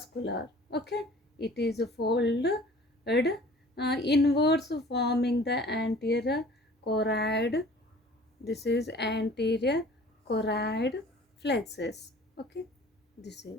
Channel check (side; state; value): both; normal; correlation 0.49